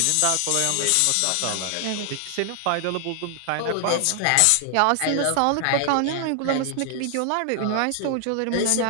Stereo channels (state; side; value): different; both; correlation 0.00